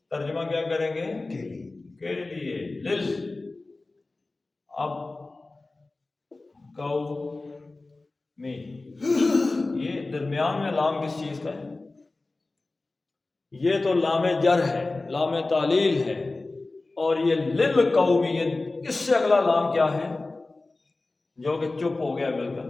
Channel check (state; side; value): quieter; right; 3.2 dB